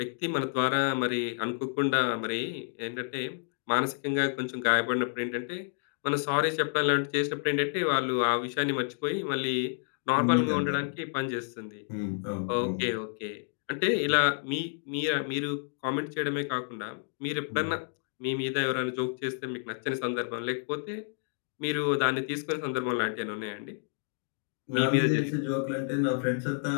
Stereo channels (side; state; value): right; silent; 58 dB below the other